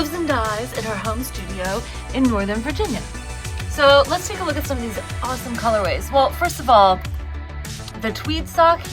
and dyes in her home studio in Northern Virginia. So let's take a look at some of these awesome colorways. Well, first of all, the tweed sock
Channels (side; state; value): both; identical; correlation 1.00